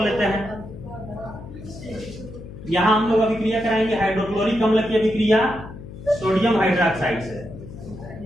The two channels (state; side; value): noise; left; hum, 13 dB below the sound